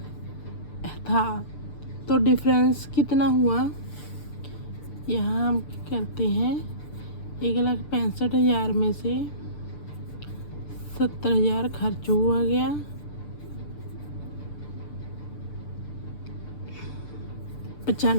था। तो डिफरेंस कितना हुआ, यहाँ हम करते हैं 1,65,000 में से 70,000 खर्च हुआ गया,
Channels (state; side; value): late; right; 6.8 ms